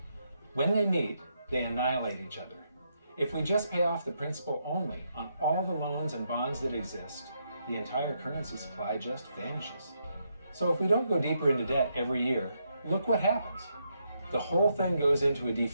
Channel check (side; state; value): both; inverted; correlation -0.79